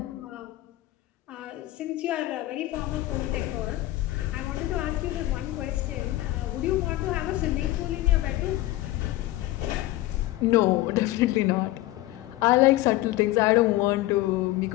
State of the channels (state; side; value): quieter; right; 16.8 dB